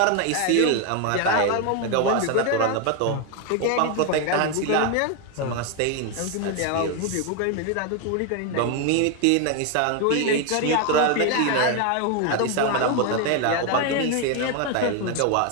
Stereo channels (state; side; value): different; both; correlation 0.01